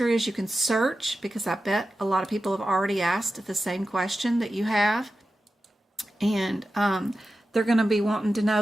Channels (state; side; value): normal; both; correlation 0.93